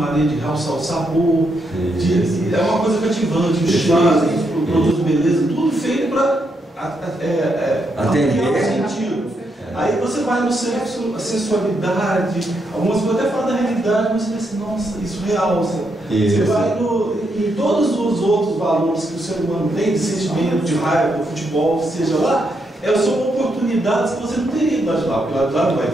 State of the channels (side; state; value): both; normal; correlation 0.80